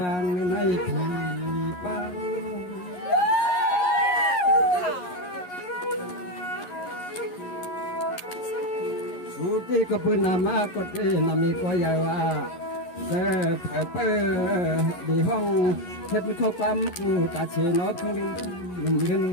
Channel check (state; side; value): late; right; 11 ms